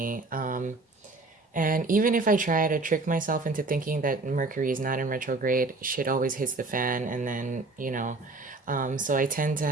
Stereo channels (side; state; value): left; quieter; 3.5 dB